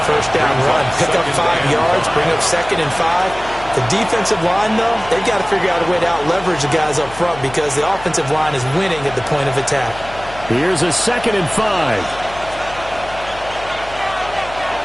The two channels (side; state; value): left; noise; hum, 16 dB below the sound